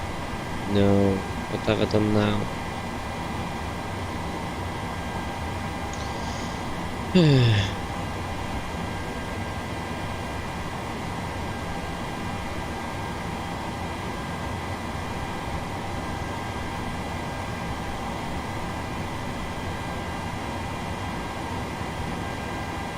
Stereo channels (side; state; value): both; identical; correlation 1.00